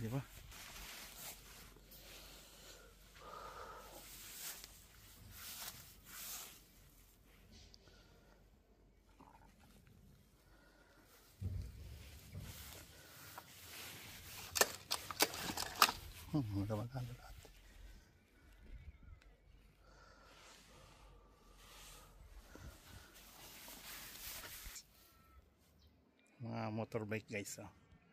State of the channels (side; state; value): both; identical; correlation 1.00